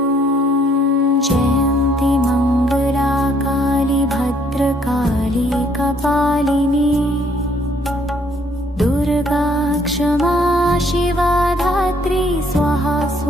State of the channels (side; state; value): both; normal; correlation 0.65